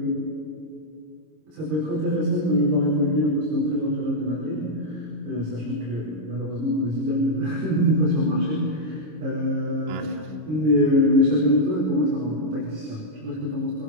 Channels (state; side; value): late; left; 26 ms